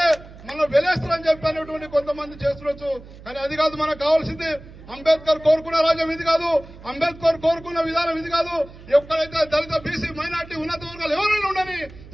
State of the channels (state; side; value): noise; right; hum, 18 dB below the sound